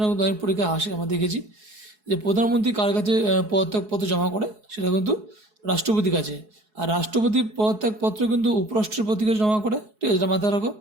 কিন্তু অনেক পরীক্ষায় আসে, আমরা দেখেছি যে প্রধানমন্ত্রী কার কাছে পদত্যাগপত্র জমা করে, সেটা কিন্তু রাষ্ট্রপতির কাছে। আর রাষ্ট্রপতি পদত্যাগপত্র কিন্তু উপরাষ্ট্রপতির কাছে জমা করে, ঠিক আছে, এটা মাথায় রাখো।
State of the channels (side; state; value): left; late; 4.7 ms